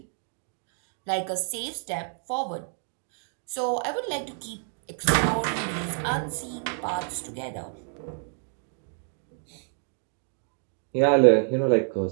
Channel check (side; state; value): left; silent; 59 dB below the other